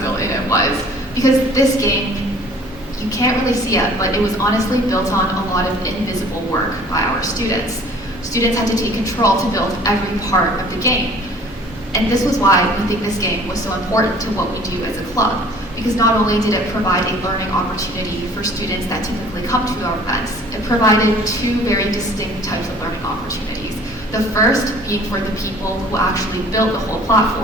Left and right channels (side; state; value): both; normal; correlation 0.51